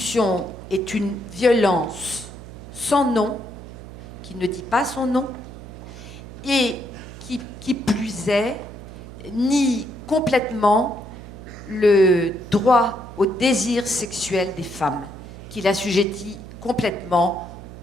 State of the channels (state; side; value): noise; right; hum, 14 dB below the sound